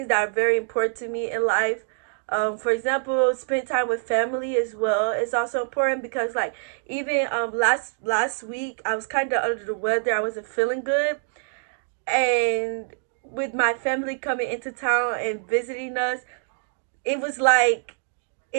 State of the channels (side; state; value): left; silent; digital silence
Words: that are very important to me in life. For example, spend time with family as well is also important, because like even last week I was kind of under the weather. I wasn't feeling good, and with my family coming into town and visiting us, it was like